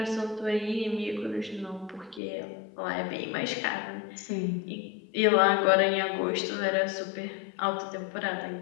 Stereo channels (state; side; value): drops out; right; at 2.2 s